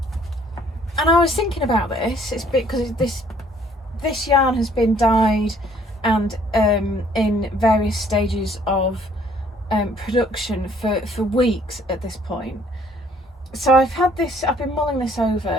I was thinking about this. It's because this yarn has been dyed and in various stages of production for weeks at this point. So I've been mulling this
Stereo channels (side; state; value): both; normal; correlation 0.61